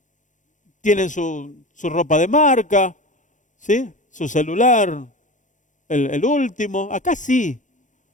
tienen su ropa de marca, ¿sí? Su celular, el último, acá sí.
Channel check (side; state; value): right; late; 0.36 ms